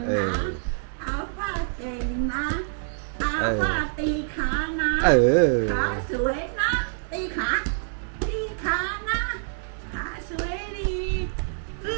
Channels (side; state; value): left; silent; digital silence